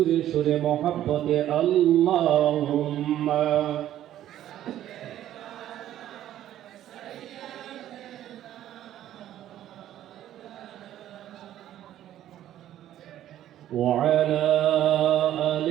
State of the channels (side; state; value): left; quieter; 12.3 dB